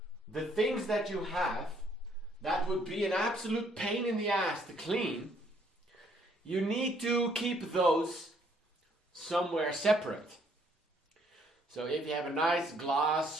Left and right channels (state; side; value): normal; both; correlation 0.66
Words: the things that you have that would be an absolute pain in the ass to clean. You need to keep those somewhere separate. So if you have a nice